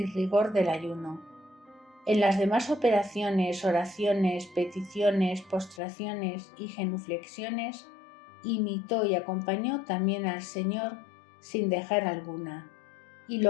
rigor del ayuno. En las demás operaciones, oraciones, peticiones, postraciones y genuflexiones, imitó y acompañó también al Señor sin dejar alguna, y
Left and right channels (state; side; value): drops out; right; at 5.8 s